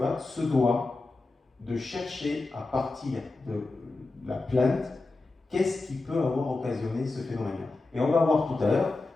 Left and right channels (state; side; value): quieter; right; 3.3 dB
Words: se doit de chercher à partir de la plainte qu'est-ce qui peut avoir occasionné ce phénomène-là. Et on va voir tout à l'heure